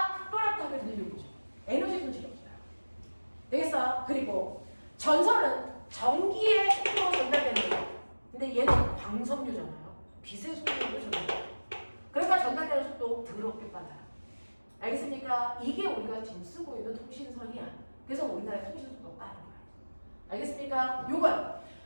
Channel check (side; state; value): both; inverted; correlation -1.00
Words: 또렷하게 들리는 거죠. 에너지 손실이 없어요. 되겠어? 그리고 전선은 전기의 속도로 전달되는 거예요. 근데 얘는 광섬유잖아요. 빛의 속도로 전달돼요. 그러니까 전달되는 속도 더럽게 빨라요. 알겠습니까? 이게 우리가 지금 쓰고 있는 통신선이야. 그래서 우리나라의 통신 속도가 빠른 거야. 알겠습니까? 요건